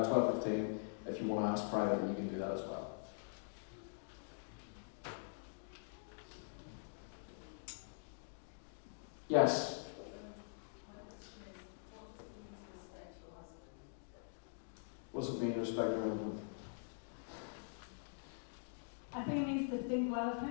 If you want to ask privately, you can do that as well. Yes. What does it mean to respect your husband? I think it means to think well of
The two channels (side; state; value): right; silent; digital silence